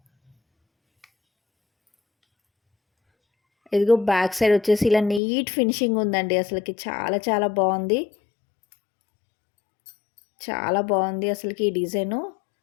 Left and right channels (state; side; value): drops out; right; at 5.2 s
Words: ఇదిగో బ్యాక్ సైడ్ వచ్చేసి ఇలా నీట్ ఫినిషింగ్ ఉందండి. అసలుకి చాలా చాలా బాగుంది. చాలా బాగుంది అసలుకి ఈ డిజైను.